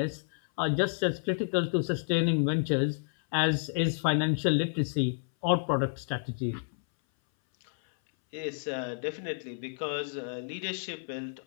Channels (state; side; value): silent; right; 58 dB below the other